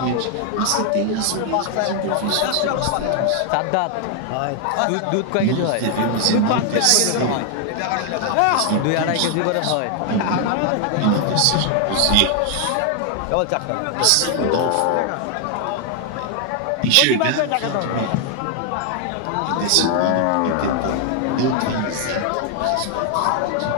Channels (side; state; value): both; different; correlation 0.00